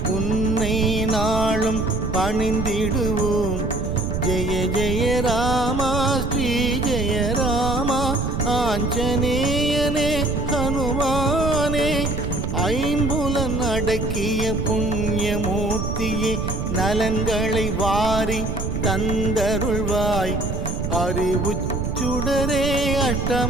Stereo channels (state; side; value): noise; right; rumble, 3 dB below the sound